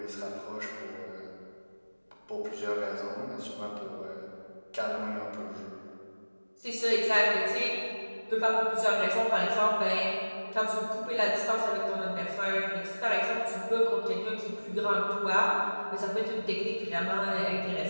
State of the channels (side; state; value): both; inverted; correlation -1.00